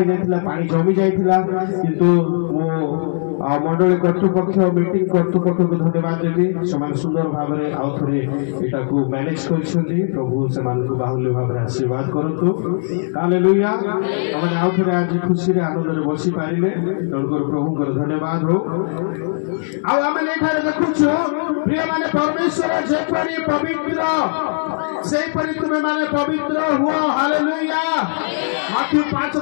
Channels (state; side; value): silent; right; 67 dB below the other